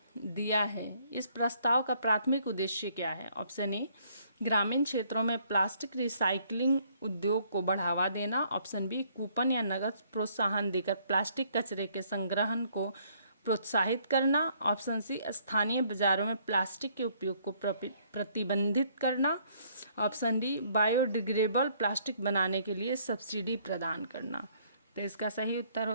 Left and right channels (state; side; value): inverted; both; correlation -0.65